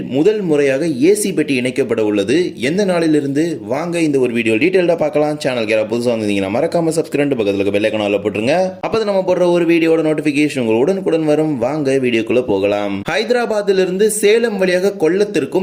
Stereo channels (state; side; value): identical; both; correlation 1.00